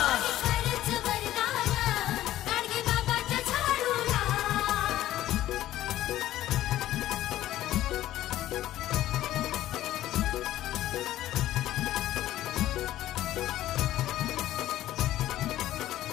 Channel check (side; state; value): right; quieter; 13.9 dB